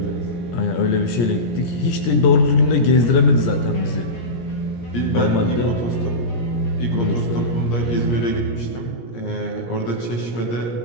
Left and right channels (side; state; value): right; late; 17 ms